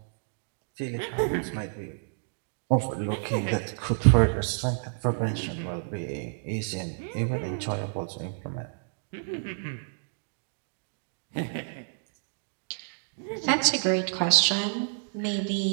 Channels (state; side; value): silent; left; digital silence